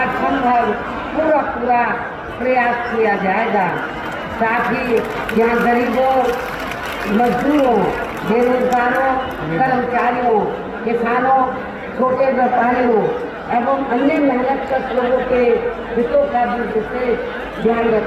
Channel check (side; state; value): both; identical; correlation 1.00